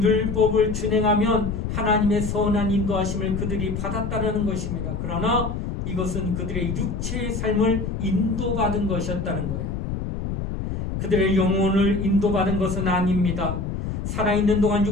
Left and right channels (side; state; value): left; noise; rumble, 4 dB below the sound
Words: 율법을 준행하면 하나님의 선한 인도하심을 그들이 받았다는 것입니다. 그러나 이것은 그들의 육체의 삶을 인도받은 것이었다는 거예요. 그들의 영혼을 인도받은 것은 아닙니다. 살아있는 동안